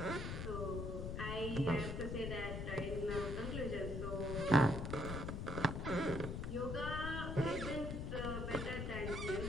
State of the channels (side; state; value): left; noise; rumble, 3 dB below the sound